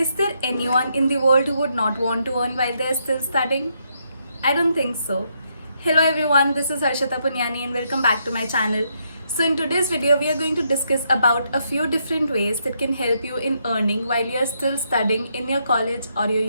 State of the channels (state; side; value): inverted; both; correlation -0.77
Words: there anyone in the world who would not want to earn while they're still studying? I don't think so. Hello everyone, this is Harshita Punyani and welcome back to my channel. So in today's video, we are going to discuss about a few different ways that can help you in earning while you are still studying in your college or your